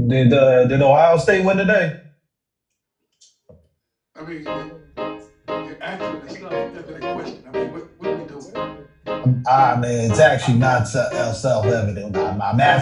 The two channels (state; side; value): identical; both; correlation 1.00